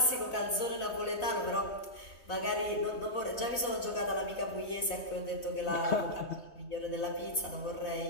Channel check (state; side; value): late; right; 3.2 ms